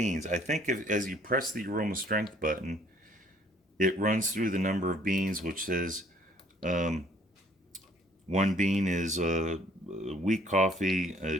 I think as you press the aroma strength button, it runs through the number of beans, which says 1 bean is weak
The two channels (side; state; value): both; normal; correlation 0.59